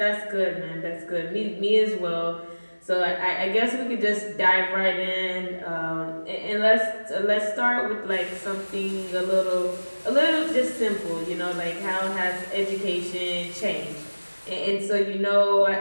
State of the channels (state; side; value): inverted; both; correlation -1.00